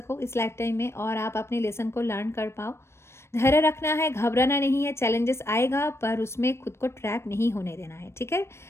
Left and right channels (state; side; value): late; right; 0.13 ms